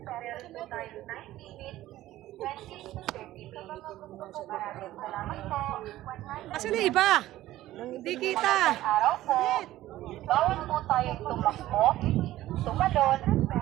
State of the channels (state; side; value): quieter; left; 15.1 dB